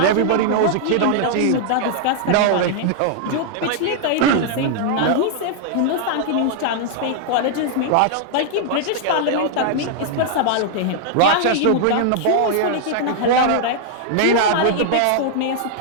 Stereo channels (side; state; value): both; different; correlation -0.01